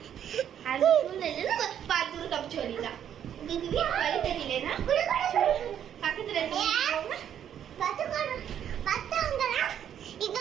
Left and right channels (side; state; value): left; quieter; 9.6 dB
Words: அந்த சூழ்நிலையில பார்த்து தப்பிச்சு வரலாம். உங்களுக்கு வீட்டு வழி தெரியலன்னா பக்கத்துல